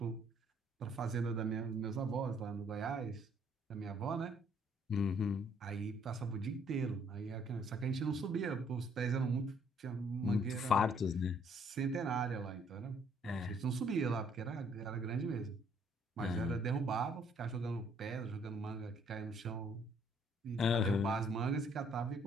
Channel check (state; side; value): normal; both; correlation 0.64